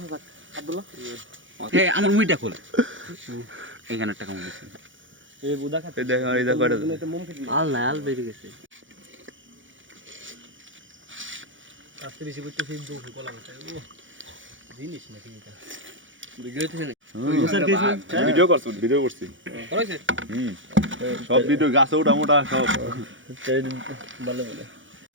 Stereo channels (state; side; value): late; left; 0.56 ms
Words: থাক আব্দুল্লাহ এই আমার মুইটা খোল এইখানে টাকা মনে আছে এই বুদা খাতে এই দেখ আর এই দেখ কয়টা আল না আল বেরিয়ে গেছে আজকে বেশি করতে সেই দুঃখ কলা মতো ও জিনিস না ঠিক আছে ভিডিও করছি ভিডিও করছি করেছে সব ভিডিও গাছে ওটা মোটা সব ভালো ভালো